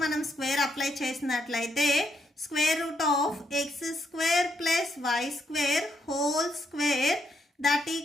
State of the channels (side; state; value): both; normal; correlation 0.77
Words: మనం square apply చేసినట్లయితే square root of X square plus why square whole square that